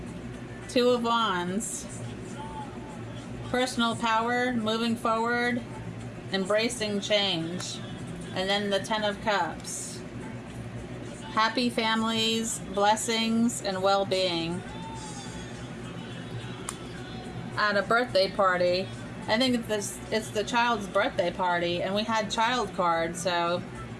Two of Wands. Personal power, moving forward, embracing change. And then the Ten of Cups. Happy families, blessings, and well-being. At a birthday party. I think it's the child's birthday party, and we had child cards, so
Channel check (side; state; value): both; identical; correlation 1.00